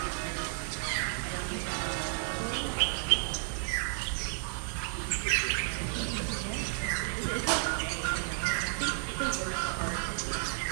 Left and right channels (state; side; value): silent; left; 56 dB below the other